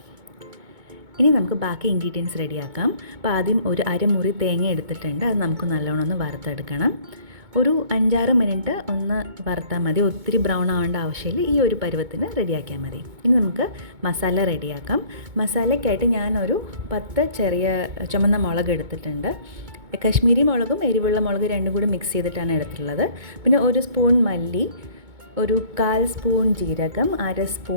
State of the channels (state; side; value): late; left; 2.2 ms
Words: ഇനി നമുക്ക് ബാക്കി ഇൻഗ്രീഡിയൻസ് റെഡിയാക്കാം. അപ്പോൾ ആദ്യം ഒരു അരമുറി തേങ്ങ എടുത്തിട്ടുണ്ട്. അത് നമുക്ക് നല്ലോണം ഒന്ന് വറുത്തെടുക്കണം. ഒരു 5-6 മിനിറ്റ് ഒന്ന് വറുത്താൽ മതി. ഒത്തിരി ബ്രൗൺ ആവേണ്ട ആവശ്യമില്ല. ഈ ഒരു പരുവത്തിന് റെഡിയാക്കിയാൽ മതി. ഇനി നമുക്ക് മസാല റെഡിയാക്കാം. മസാലയ്ക്കായിട്ട് ഞാനൊരു 10 ചെറിയ ചുമന്ന മുളക് എടുത്തിട്ടുണ്ട്. കശ്മീരി മുളകും എരിവുള്ള മുളക് രണ്ടും കൂടി മിക്സ് ചെയ്തിട്ടാണ് എടുത്തിട്ടുള്ളത്. പിന്നെ 1 സ്പൂൺ മല്ലി, ഒരു 1/4 സ്പൂൺ ജീരകം, 1/2